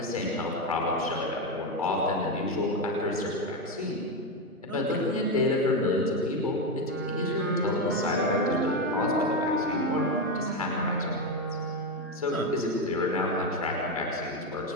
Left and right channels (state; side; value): normal; both; correlation 0.11